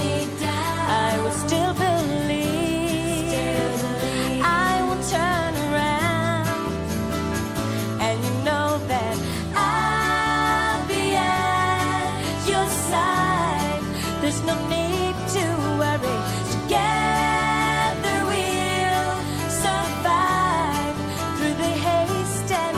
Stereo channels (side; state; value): both; identical; correlation 1.00